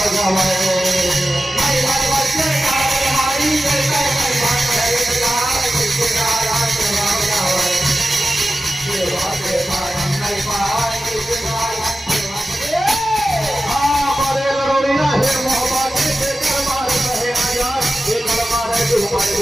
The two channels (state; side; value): normal; both; correlation 0.94